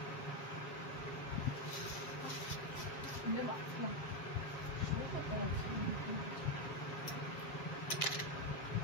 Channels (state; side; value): late; right; 7.6 ms